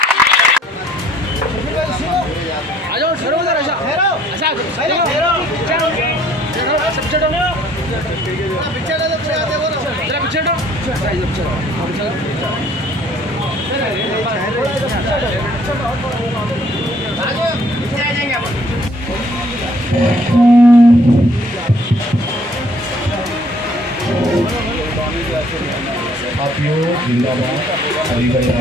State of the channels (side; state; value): both; normal; correlation 0.61